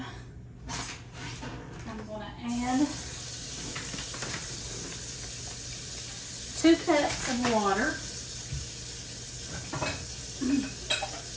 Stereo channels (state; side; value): identical; both; correlation 1.00